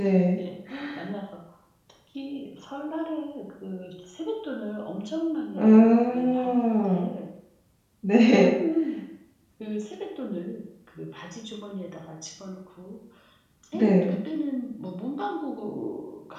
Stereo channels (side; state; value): both; identical; correlation 1.00